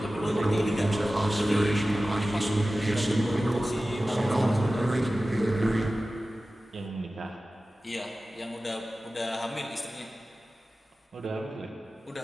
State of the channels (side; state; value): both; normal; correlation 0.96